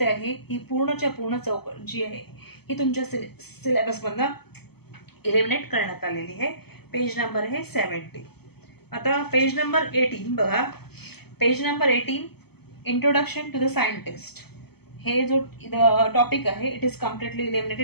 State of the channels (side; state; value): right; late; 0.96 ms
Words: आहे. ही पूर्णच्या पूर्ण चौकट जी आहे ही तुमच्या सिलेबस मधनं इलिमिनेट करण्यात आलेली आहे. पेज नंबर आहे 70. आता पेज नंबर 18 बघा. Page number 18 introduction to the scientist. हे जो टॉपिक आहे it is completely